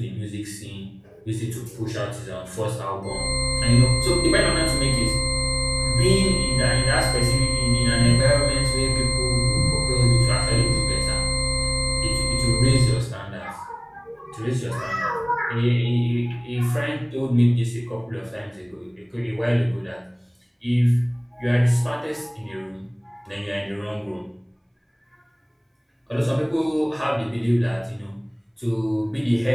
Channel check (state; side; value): identical; both; correlation 1.00